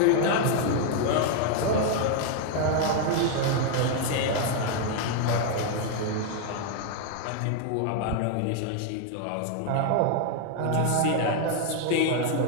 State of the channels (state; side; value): different; both; correlation 0.00